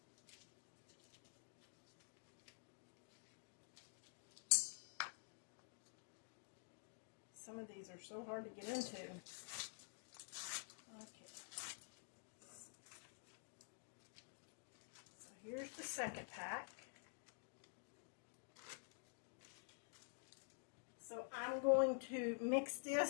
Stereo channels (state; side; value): silent; right; digital silence